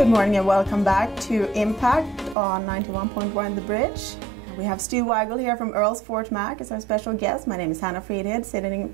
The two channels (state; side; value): drops out; left; at 2.4 s